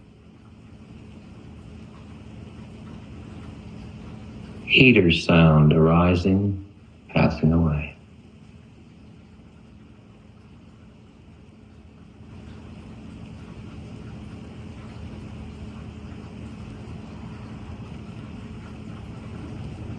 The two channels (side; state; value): both; identical; correlation 1.00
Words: Heater sound arising, passing away.